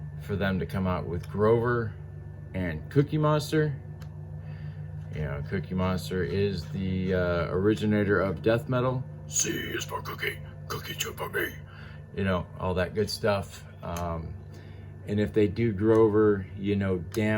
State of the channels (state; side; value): identical; both; correlation 1.00